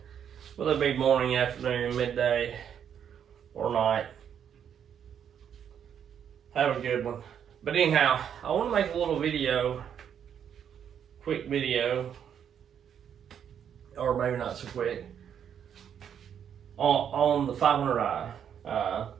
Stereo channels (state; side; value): quieter; left; 8.6 dB